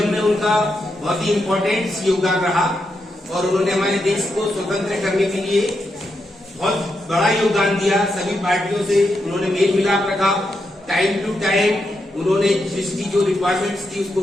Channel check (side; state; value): both; normal; correlation 0.84